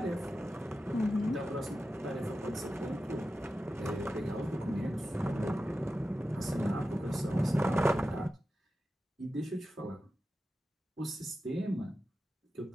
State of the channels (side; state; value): both; normal; correlation 0.92